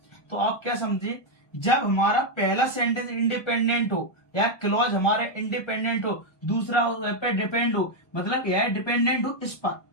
तो आप क्या समझे, जब हमारा पहला सेंटेंस इंडिपेंडेंट हो या क्लॉज हमारे इंडिपेंडेंट हो, दूसरा वह पर डिपेंड हो, मतलब यह डिपेंडेंट हो इस पर,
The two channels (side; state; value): right; late; 1.1 ms